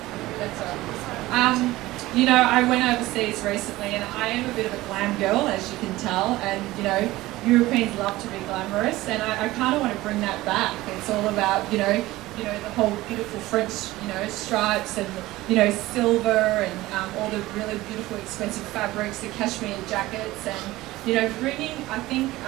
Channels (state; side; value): quieter; left; 17.9 dB